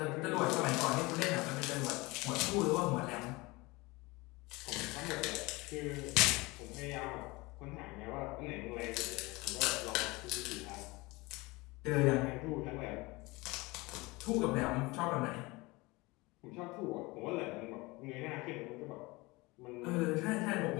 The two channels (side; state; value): right; quieter; 23.3 dB